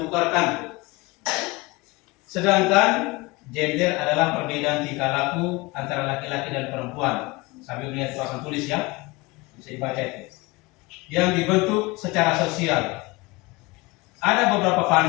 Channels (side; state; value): right; quieter; 23.7 dB